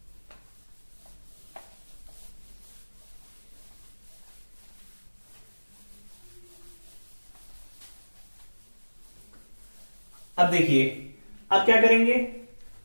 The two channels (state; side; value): inverted; both; correlation -1.00